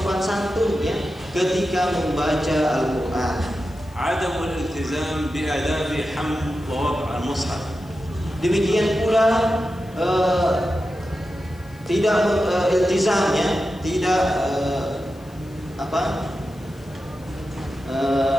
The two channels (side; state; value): left; noise; hiss, 28 dB below the sound